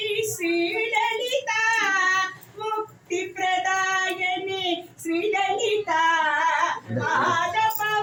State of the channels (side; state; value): both; identical; correlation 1.00